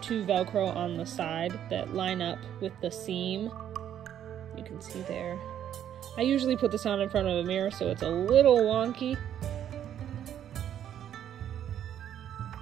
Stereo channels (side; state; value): left; quieter; 10.2 dB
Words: Velcro on the side that line up with the seam. You can see there. I usually put this on in front of a mirror, so it's a little wonky.